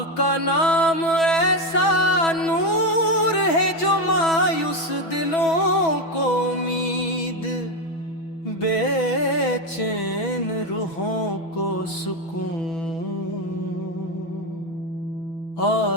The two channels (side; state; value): right; late; 6.1 ms